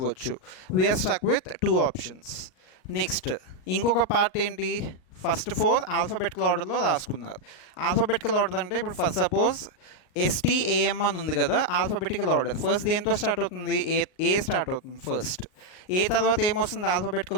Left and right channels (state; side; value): late; right; 38 ms